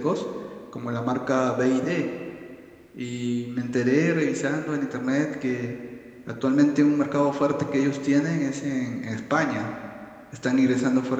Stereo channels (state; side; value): identical; both; correlation 1.00